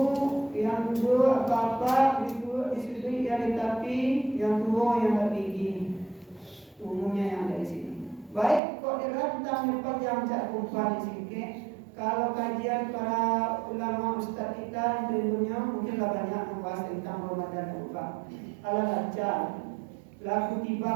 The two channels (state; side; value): drops out; left; at 8.6 s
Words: yang dua bapak, ibu, istri yang tetapi, yang tua yang tertinggi, umumnya yang dari sini. Baik, kok dirantang panjang cak kumpulan di sini. Kalau kajian para ulama ustaz kita tentunya mungkinlah banyak membahas tentang Ramadan Buka. Kalau baca, laku